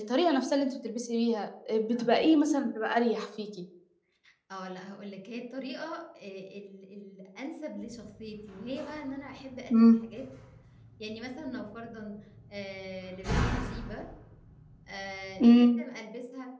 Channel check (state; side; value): identical; both; correlation 1.00